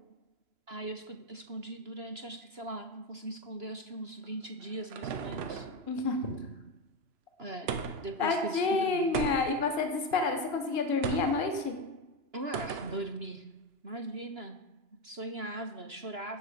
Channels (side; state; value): left; late; 2.9 ms